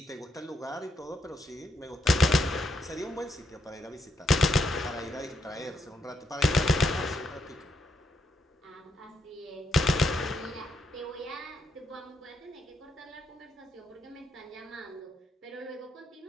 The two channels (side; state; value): both; normal; correlation 0.78